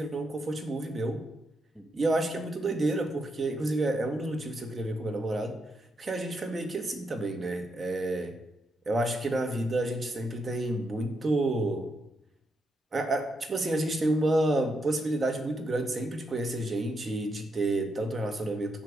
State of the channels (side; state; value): both; normal; correlation 0.81